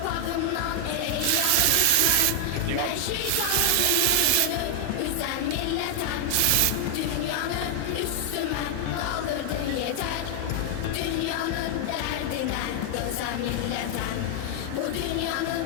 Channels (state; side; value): different; both; correlation 0.00